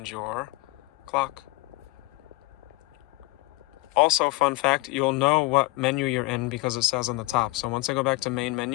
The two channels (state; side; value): quieter; right; 21.2 dB